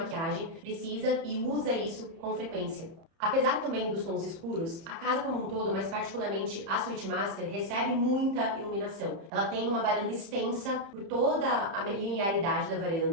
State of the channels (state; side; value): late; left; 30 ms